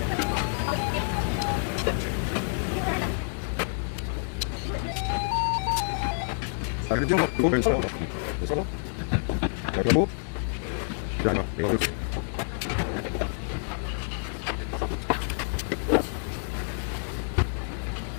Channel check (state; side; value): silent; right; digital silence